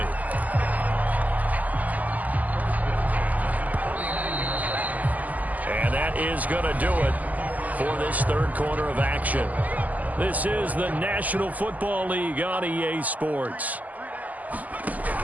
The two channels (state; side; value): late; left; 0.079 ms